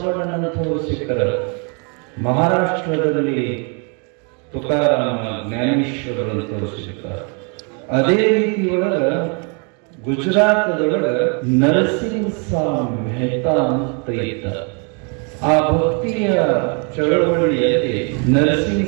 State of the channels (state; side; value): quieter; left; 36.3 dB